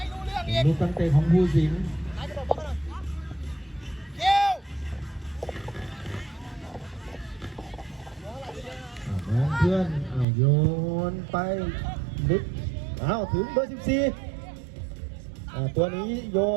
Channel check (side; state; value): left; drops out; at 10.2 s